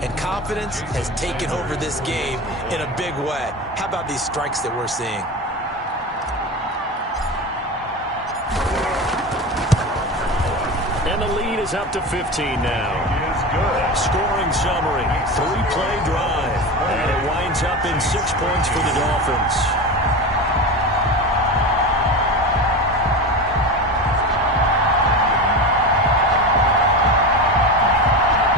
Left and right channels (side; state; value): both; normal; correlation 0.25